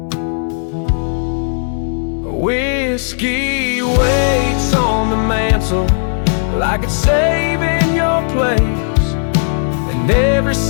Whiskey waits on the mantle like it's saving your place, and every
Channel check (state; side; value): silent; right; digital silence